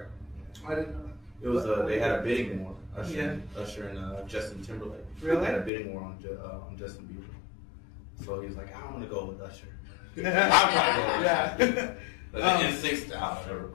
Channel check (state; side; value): drops out; right; at 5.7 s